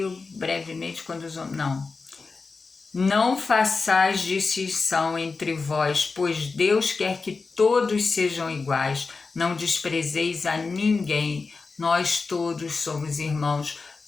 brevemente quando os homens... Não façais distinção entre vós, pois Deus quer que todos sejam iguais. Não desprezeis a ninguém. Nós todos somos irmãos,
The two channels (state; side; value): quieter; right; 4.3 dB